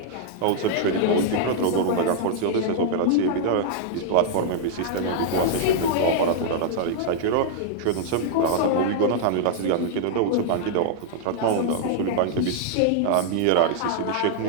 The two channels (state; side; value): different; both; correlation -0.01